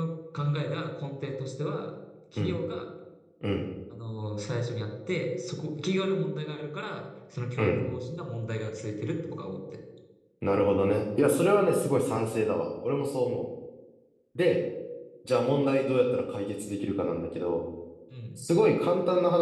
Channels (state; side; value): identical; both; correlation 1.00